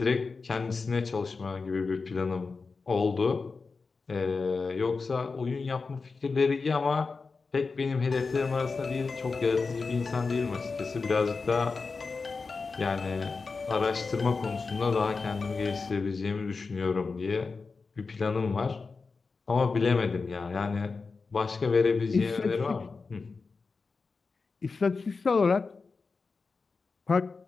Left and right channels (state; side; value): quieter; right; 4.4 dB